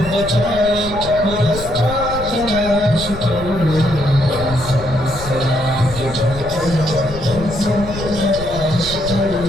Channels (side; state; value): left; noise; rumble, 11 dB below the sound